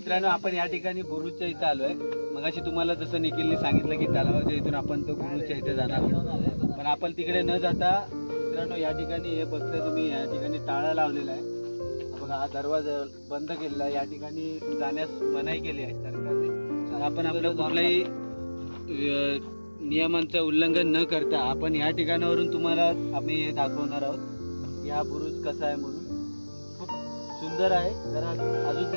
आपण या ठिकाणी बुरुजच्या इथं आलोय. मगाशी तुम्हाला जसं निखिलने सांगितलं की तलावाच्या इथून आपण तो बुरुजच्या इथे जाणार आहोत. पण आपण तिकडे न जाता मित्रांनो या ठिकाणी हे बघताय तुम्ही, या ठिकाणी टाळा लावलेला आहे. बघा, हा दरवाजा बंद केलेला आहे. या ठिकाणी जाण्यास मनाई केली आहे सरकारने. आपण आपलं कुठल्याही नियमांचं उल्लंघन न करता आपण या ठिकाणावरून तुम्हाला आम्ही हे दाखवणार आहोत की हा बुरुज कसा आहे म्हणून. खूप सुंदर आहे. जरा अजून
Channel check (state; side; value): inverted; both; correlation -1.00